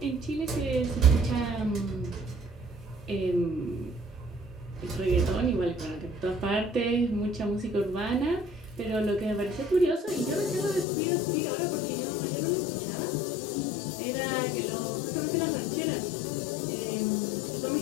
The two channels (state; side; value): drops out; right; at 10.9 s